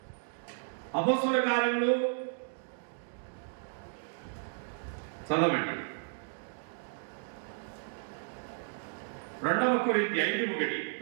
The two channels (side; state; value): left; silent; digital silence